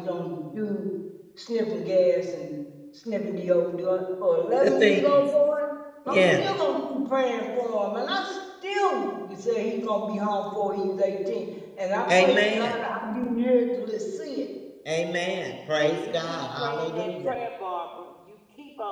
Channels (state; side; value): identical; both; correlation 1.00